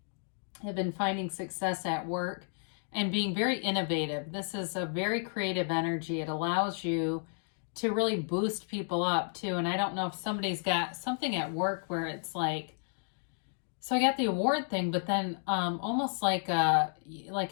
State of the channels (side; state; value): right; silent; 56 dB below the other